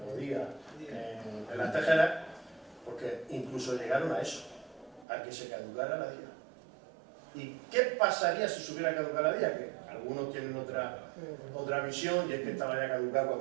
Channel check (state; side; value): drops out; left; at 5.1 s